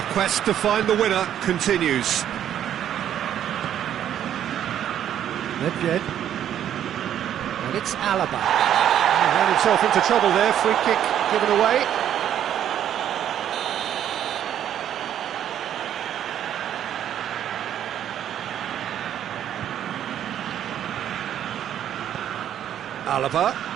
quest to find the winner continues. Nedved. And it's Alaba. He ran himself into trouble there, free kick given away. Alaba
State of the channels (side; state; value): left; quieter; 10.4 dB